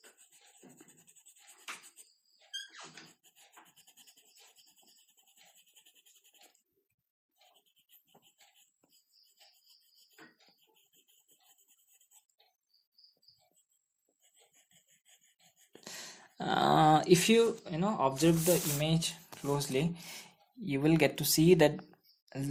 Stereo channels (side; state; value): both; identical; correlation 1.00